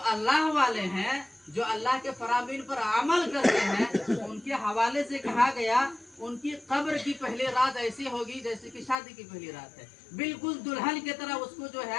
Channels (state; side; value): drops out; right; at 9.0 s